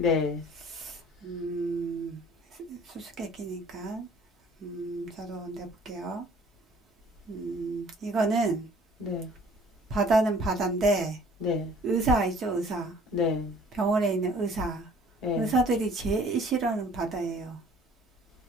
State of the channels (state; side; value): normal; both; correlation 0.53